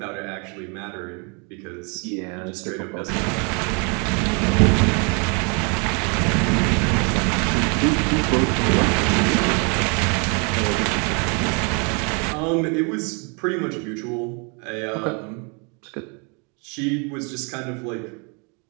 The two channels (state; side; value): quieter; left; 34.3 dB